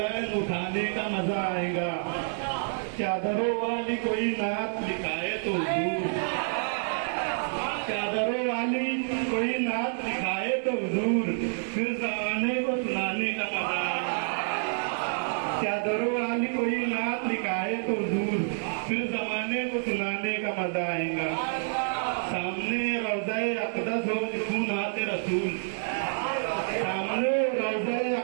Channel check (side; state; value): left; silent; 59 dB below the other